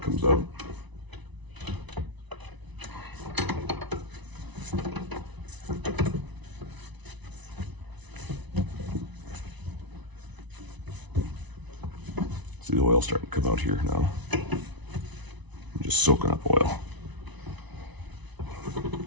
comes out. See the oil starting to come out here now. I'm just soaking up oil.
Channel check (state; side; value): late; left; 1.0 ms